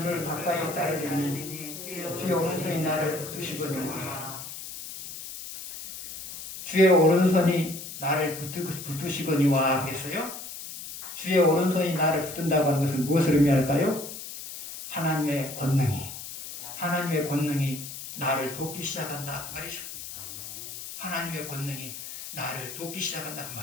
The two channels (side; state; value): left; noise; hiss, 10 dB below the sound